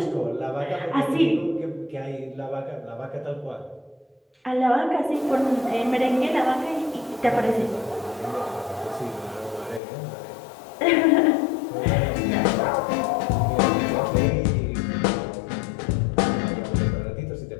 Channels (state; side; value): drops out; right; at 9.8 s